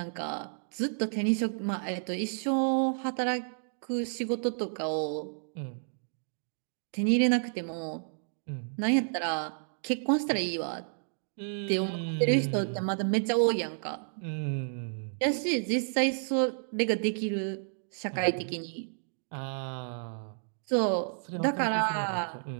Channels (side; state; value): left; silent; digital silence